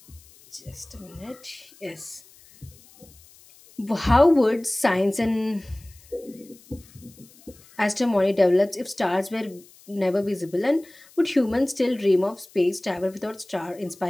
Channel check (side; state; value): left; noise; hiss, 25 dB below the sound